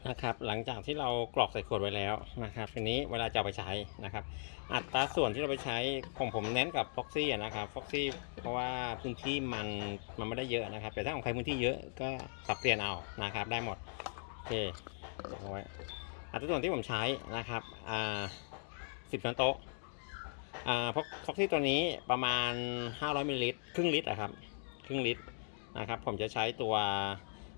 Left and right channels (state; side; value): silent; right; digital silence